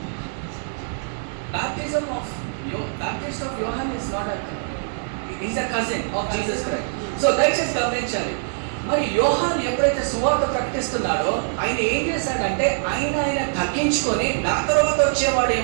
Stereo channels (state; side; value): silent; left; digital silence